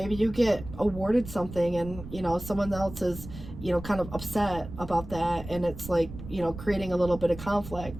you get awarded something and, you know, someone else is, you know, kind of upset about that, and it's like, you know, creating a little bit of conflict.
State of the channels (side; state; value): right; noise; rumble, 12 dB below the sound